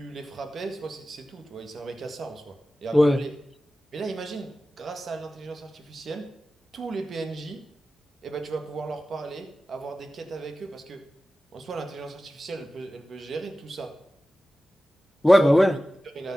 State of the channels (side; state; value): both; normal; correlation 0.95